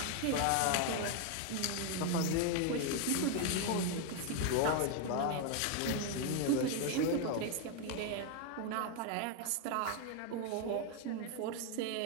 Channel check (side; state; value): both; different; correlation 0.01